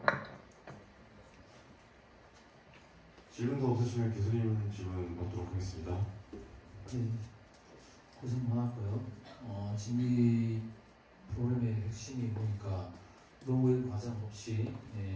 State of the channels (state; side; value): identical; both; correlation 1.00